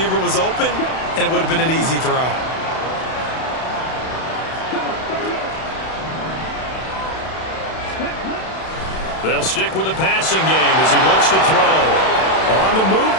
was open, and it would have been an easy throw. They'll stick with the passing game as he looks to throw. On the move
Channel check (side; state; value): right; late; 32 ms